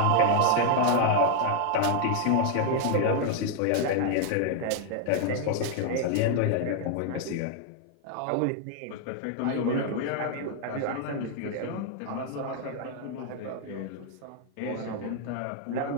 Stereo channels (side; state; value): both; different; correlation 0.00